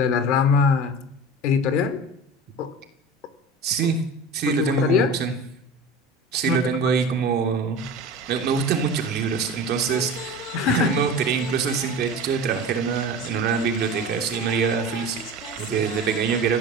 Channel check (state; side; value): normal; both; correlation 0.33